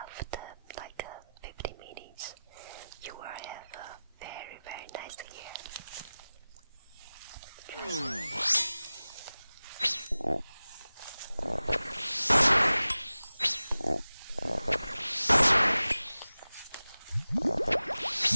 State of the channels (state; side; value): inverted; both; correlation -0.97